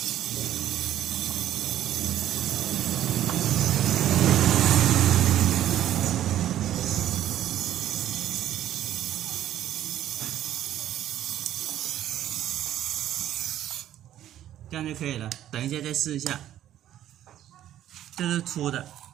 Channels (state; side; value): quieter; left; 12.0 dB